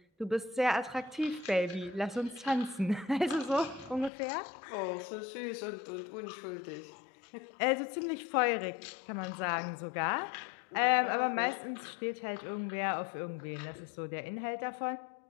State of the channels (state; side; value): drops out; right; at 4.1 s